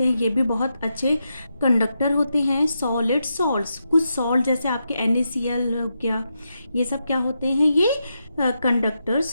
हैं। ये भी बहुत अच्छे कंडक्टर होते हैं। सॉलिड सॉल्ट्स, कुछ सॉल्ट जैसे आपके NaCl हो गया, ये सब क्या होते हैं? ये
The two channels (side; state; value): both; inverted; correlation -0.85